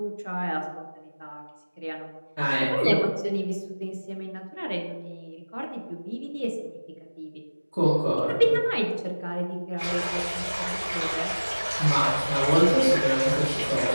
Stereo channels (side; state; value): both; inverted; correlation -1.00